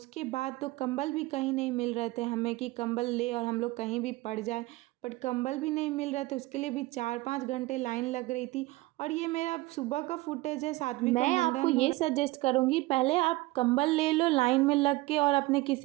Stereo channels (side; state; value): left; quieter; 20.3 dB